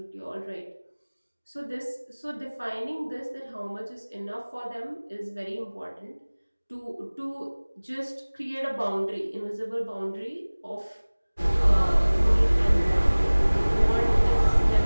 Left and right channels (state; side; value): inverted; both; correlation -1.00